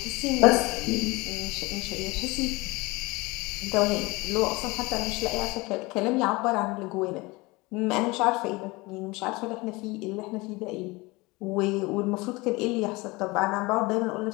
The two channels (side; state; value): right; quieter; 23.5 dB